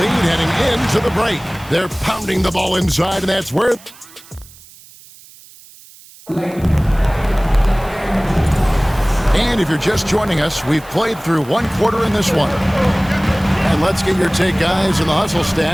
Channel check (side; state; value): right; noise; hiss, 22 dB below the sound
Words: lead heading into the break. They're pounding the ball inside, and that's where... And if you're just joining us, we've played through one quarter in this one. And let's get your take, guys, and the hustle